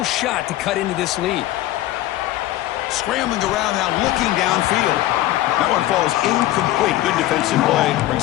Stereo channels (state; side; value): quieter; right; 15.2 dB